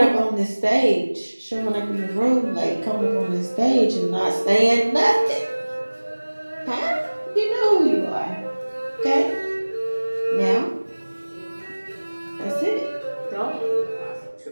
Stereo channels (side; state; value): both; inverted; correlation -1.00